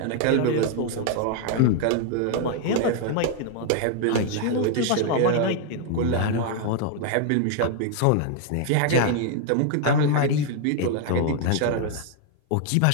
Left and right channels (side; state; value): both; different; correlation 0.00